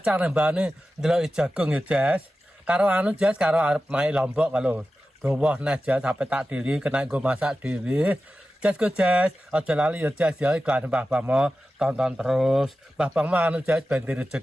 nembane ndelok jagung ya Jes. Karo anu Jes karo arep main Lombok kalau dawa nah Jes sampe tak dili kena nggo masak dhewe. Jes go Jes, aja lali ya Jes ya iklan Mbah tonton terus. Mbah anu Jes ben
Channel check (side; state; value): both; normal; correlation 0.93